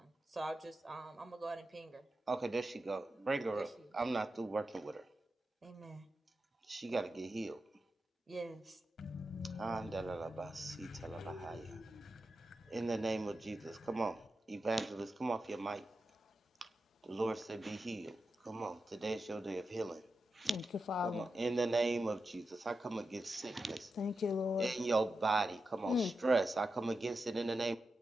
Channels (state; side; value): normal; both; correlation 0.90